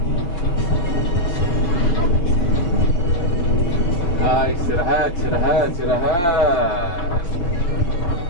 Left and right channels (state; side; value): late; right; 5.8 ms